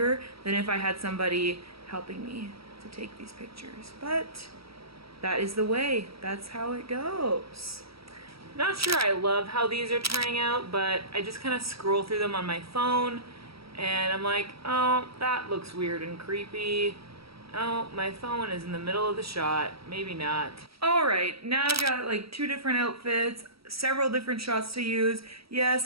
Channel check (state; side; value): late; left; 0.76 ms